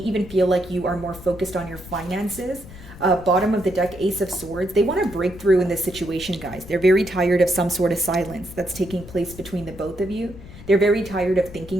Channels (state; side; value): noise; left; rumble, 16 dB below the sound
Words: feel like you are more focused on your finances. Bottom of the deck, Ace of Swords. They want to break through in this situation, guys. They're very tired of some sort of silence that's taking place between the both of you. They're very tired of